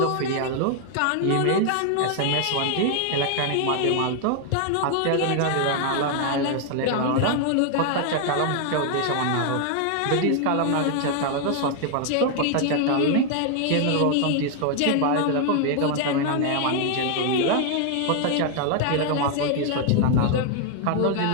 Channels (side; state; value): both; different; correlation 0.00